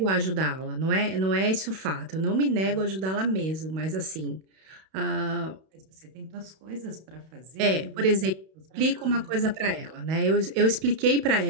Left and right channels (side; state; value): left; late; 31 ms